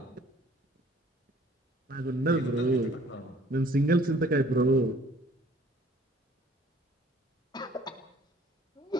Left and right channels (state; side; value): normal; both; correlation 0.55